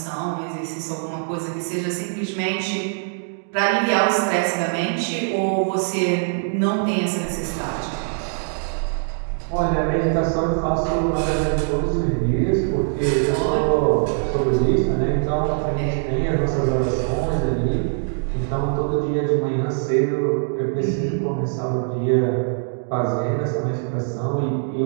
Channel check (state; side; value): silent; left; digital silence